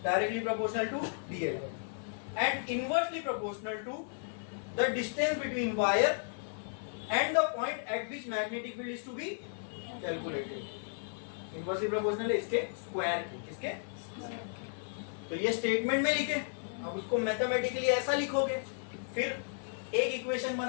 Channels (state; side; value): silent; right; 55 dB below the other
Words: directly proportional to dl, and inversely proportional to the distance between wire and the point at which magnetic field is to be calculated. Inversely proportional है इसके स्क्वायर के, किसके? तो ये स्टेटमेंट में लिखे, अब उसको मैथमेटिकली ऐसा लिखोगे, फिर एक इक्वेशन